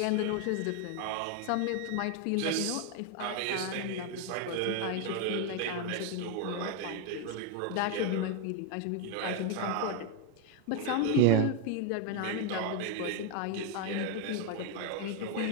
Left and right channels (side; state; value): both; different; correlation 0.01